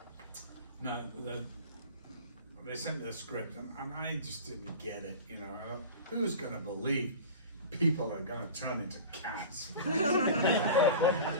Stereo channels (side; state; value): both; inverted; correlation -0.35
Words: they sent me the script, and I just didn't get it, you know. Who's going to believe people are going to turn into cats?